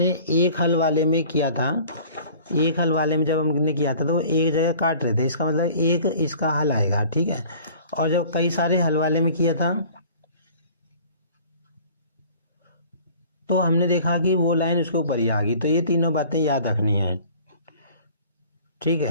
एक हल वाले में किया था, एक हल वाले में जब हमने किया था तो वो एक जगह काट रहे थे, इसका मतलब एक इसका हल आएगा। ठीक है, और जब कई सारे हल वाले में किया था तो हमने देखा कि वो लाइन उसके ऊपर ही आ गई। तो ये तीनों बातें याद रखनी है। ठीक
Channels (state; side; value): inverted; both; correlation -0.48